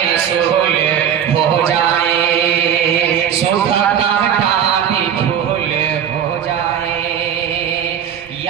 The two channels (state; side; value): quieter; left; 8.9 dB